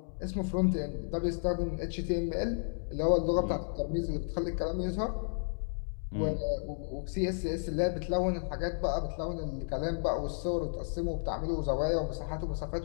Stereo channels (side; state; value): right; silent; digital silence